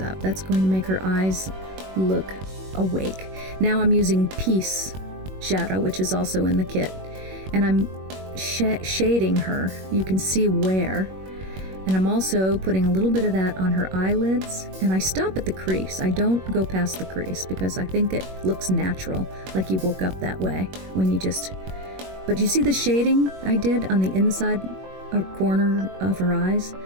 That's going to make her eyes look awake. Now I'm using Peace shadow, which is also in the kit, and I'm shading her. You can see where. And I'm also putting a little bit of that on her eyelids, and I stop at the crease. I don't go past the crease because I think it looks natural, like you woke up that way when you just... But you see the shading I did on the inside corner of her eyes?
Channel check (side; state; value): left; late; 21 ms